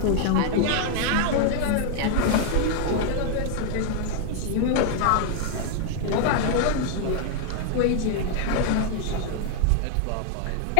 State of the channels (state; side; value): different; both; correlation 0.00